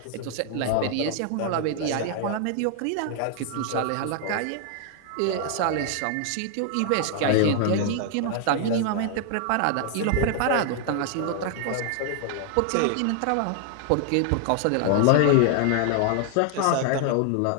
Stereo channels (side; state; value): both; different; correlation 0.00